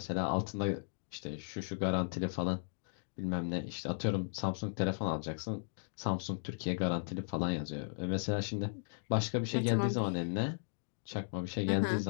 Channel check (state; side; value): silent; right; digital silence